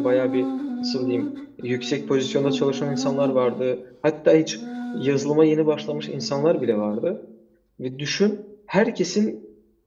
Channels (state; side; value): identical; both; correlation 1.00